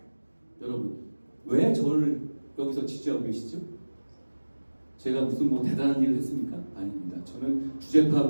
여러분, 왜 저를 여기서 지지하고 계시죠? 제가 무슨 대단한 일을 했습니까? 아닙니다. 저는 주제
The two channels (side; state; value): both; inverted; correlation -1.00